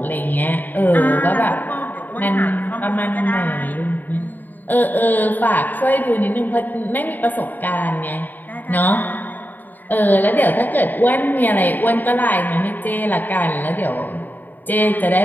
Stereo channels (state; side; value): late; right; 0.088 ms